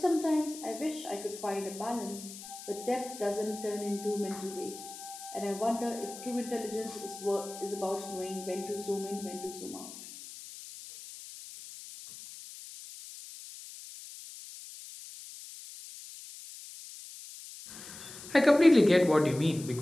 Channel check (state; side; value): noise; left; hiss, 14 dB below the sound